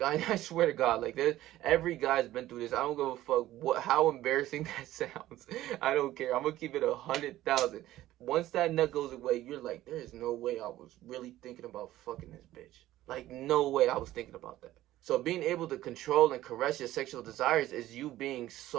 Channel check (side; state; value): left; quieter; 14.8 dB